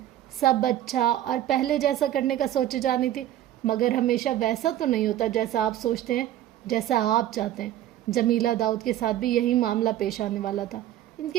سب اچھا اور پہلے جیسا کرنے کا سوچے جانی تھی، مگر ہمیشہ ویسا تو نہیں ہوتا جیسا آپ سوچتے ہیں، جیسا آپ چاہتے ہیں۔ جمیلہ داؤد کے ساتھ بھی یہی معاملہ پیش آنے والا تھا۔ ان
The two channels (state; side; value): quieter; left; 12.8 dB